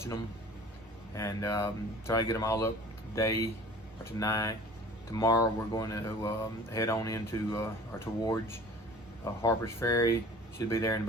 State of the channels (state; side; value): normal; both; correlation 0.45